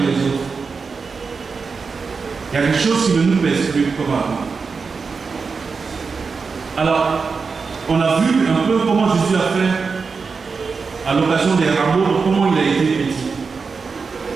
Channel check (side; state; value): left; quieter; 4.9 dB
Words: les autres. Il y a quelque chose qui ne nous pèse plus comme avant. Alors, on a vu un peu comment Jésus a fait à l'occasion des rameaux, comment il a été petit.